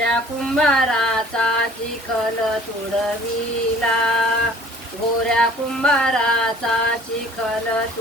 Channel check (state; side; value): normal; both; correlation 0.51